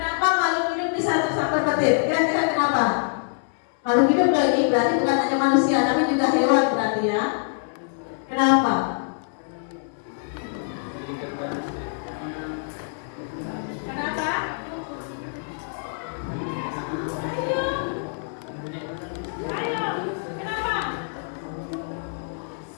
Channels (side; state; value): right; silent; 62 dB below the other